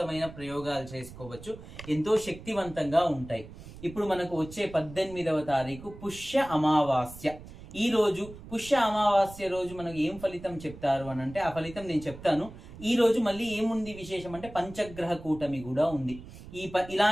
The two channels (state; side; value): noise; right; rumble, 16 dB below the sound